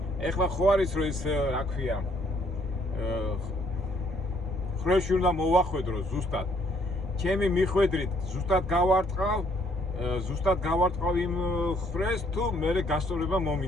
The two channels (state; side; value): normal; both; correlation 0.66